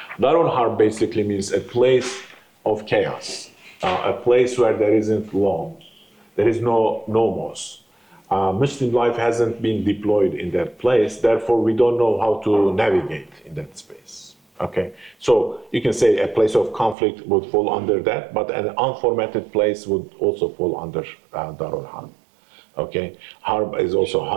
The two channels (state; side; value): drops out; left; at 16.9 s